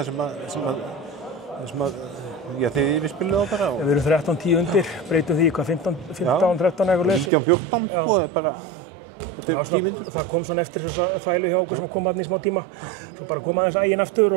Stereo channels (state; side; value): drops out; left; at 7.3 s